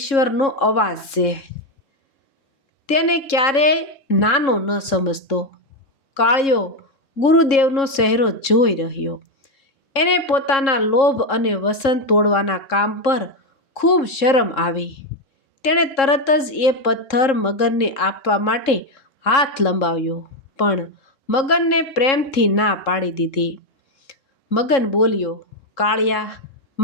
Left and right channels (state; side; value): late; right; 3.7 ms